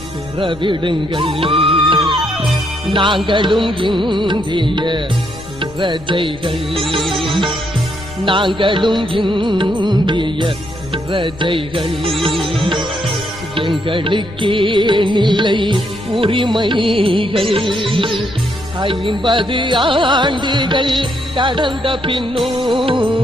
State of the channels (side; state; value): left; noise; rumble, 17 dB below the sound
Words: பெறவிடுங்கள். நாங்களும் இந்திய பிரஜைகள், நாங்களும் இந்திய பிரஜைகள். எங்களுக்கே நிலை உரிமைகள் 50 ஆண்டுகள் கடந்த பின்னும்